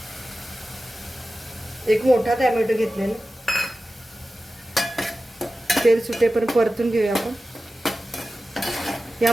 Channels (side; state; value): both; normal; correlation 0.94